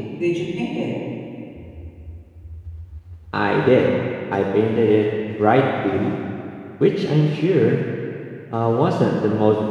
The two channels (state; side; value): identical; both; correlation 1.00